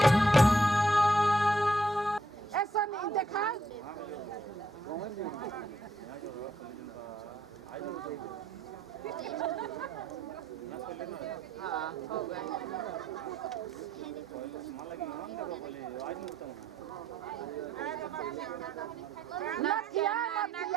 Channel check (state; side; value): normal; both; correlation 0.72